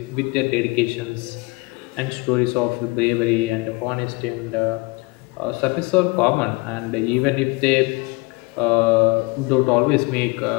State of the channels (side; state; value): right; quieter; 25.7 dB